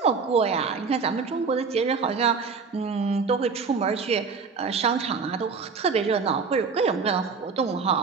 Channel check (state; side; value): quieter; left; 5.2 dB